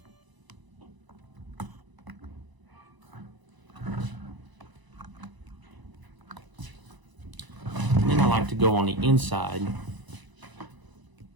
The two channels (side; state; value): left; late; 1.0 ms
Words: I like to go on the inside